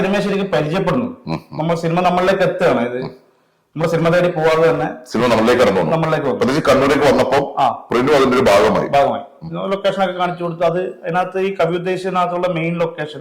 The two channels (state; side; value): identical; both; correlation 1.00